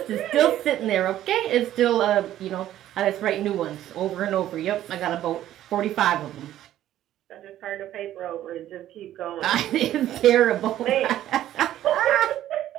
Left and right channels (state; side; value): quieter; left; 12.7 dB